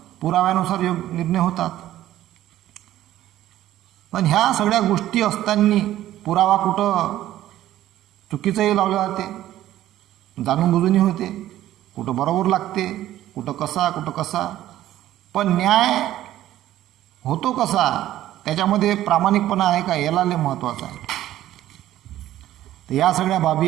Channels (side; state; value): left; quieter; 13.6 dB